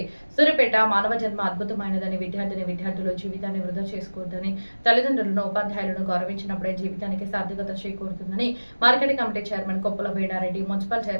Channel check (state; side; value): inverted; both; correlation -1.00